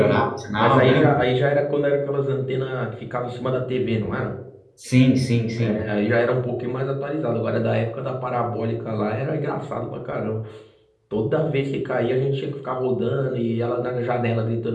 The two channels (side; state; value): both; identical; correlation 1.00